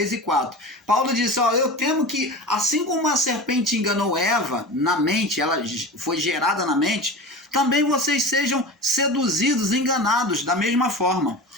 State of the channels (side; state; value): both; normal; correlation 0.31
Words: e 4. Paulo disse, eu temo que, assim como a serpente enganou Eva na mente, ela foi gerada na mente, também vocês sejam seduzidos, enganados da mesma forma.